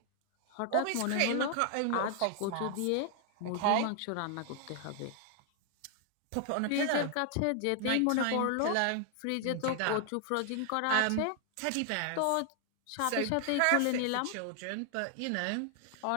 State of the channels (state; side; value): different; both; correlation 0.00